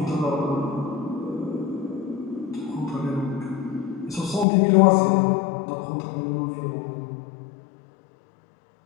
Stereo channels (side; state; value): right; drops out; at 4.5 s